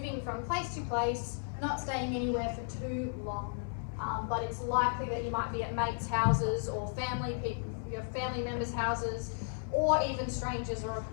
from place to place, not staying anywhere for too long, but it's likely that you might be at mates' houses or your family members' houses, or even strangers or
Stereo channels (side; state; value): right; silent; 55 dB below the other